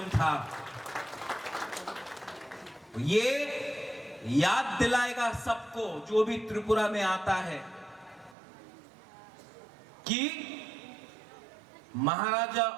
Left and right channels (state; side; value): drops out; left; at 8.3 s